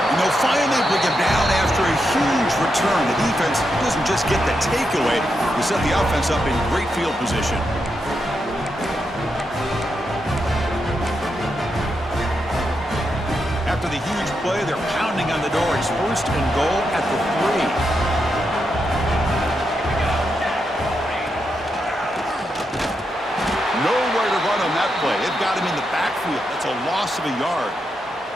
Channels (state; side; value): normal; both; correlation 0.84